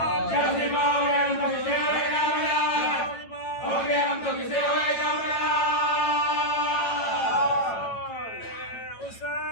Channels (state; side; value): late; right; 9.0 ms